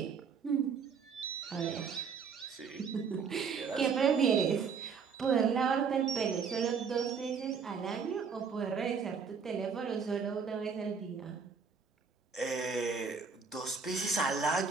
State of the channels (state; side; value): quieter; left; 5.9 dB